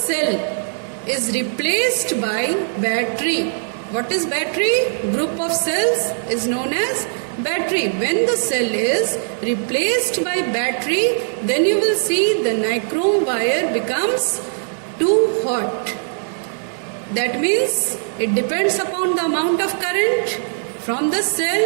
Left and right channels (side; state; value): left; silent; 59 dB below the other